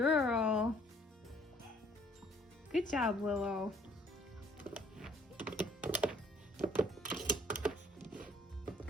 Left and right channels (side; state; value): both; normal; correlation 0.60